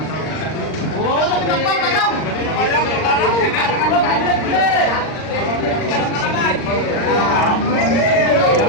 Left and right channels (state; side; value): late; right; 39 ms